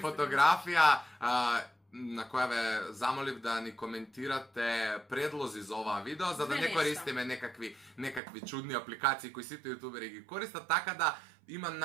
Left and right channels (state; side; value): drops out; left; at 8.2 s